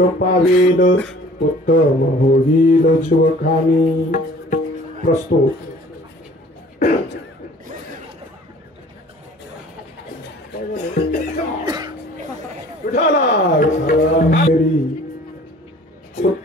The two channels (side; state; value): both; normal; correlation 0.50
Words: पावेल उत्तम होईल जीवखानी प्रस्तुत